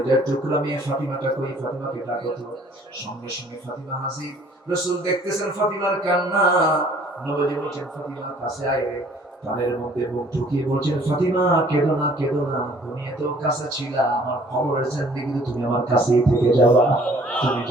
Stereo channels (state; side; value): normal; both; correlation 0.56